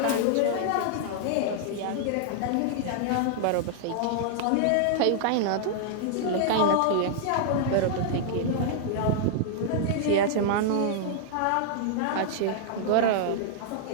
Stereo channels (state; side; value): different; both; correlation -0.01